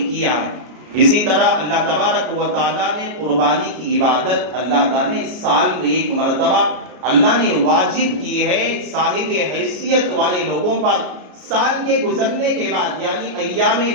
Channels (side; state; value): left; late; 33 ms